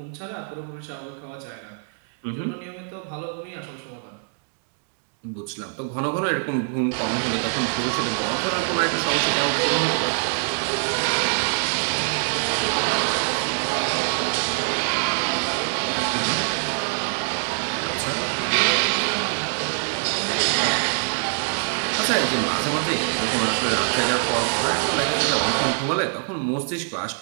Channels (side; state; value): left; silent; digital silence